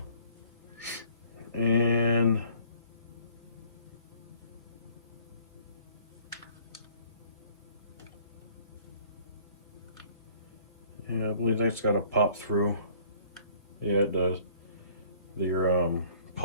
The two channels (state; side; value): inverted; both; correlation -0.55